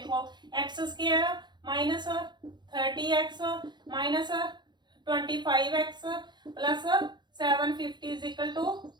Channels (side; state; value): left; late; 0.21 ms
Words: x square minus 30x minus 25x plus 750 is equal to